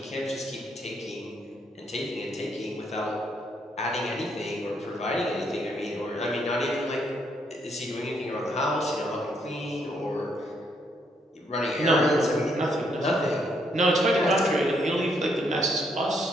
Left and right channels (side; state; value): both; normal; correlation 0.73